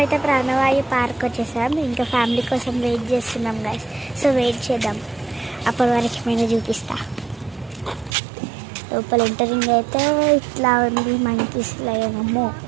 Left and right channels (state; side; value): drops out; left; at 8.2 s